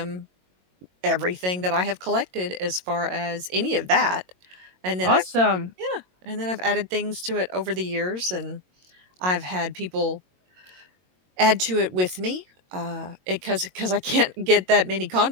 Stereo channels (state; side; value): late; left; 22 ms